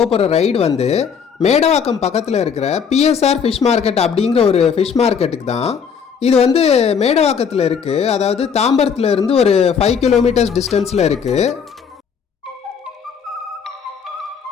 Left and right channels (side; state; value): right; quieter; 6.8 dB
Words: போகிற ரைடு வந்து மேடவாக்கம் பக்கத்தில் இருக்கிற பிஎஸ்ஆர் ஃபிஷ் மார்க்கெட் அப்படிங்கிற ஒரு ஃபிஷ் மார்க்கெட்டுக்கு தான். இது வந்து மேடவாக்கத்தில் இருக்குது, அதாவது தாம்பரத்தில் இருந்து ஒரு 5 கிலோமீட்டர்ஸ் டிஸ்டன்ஸில் இருக்குது.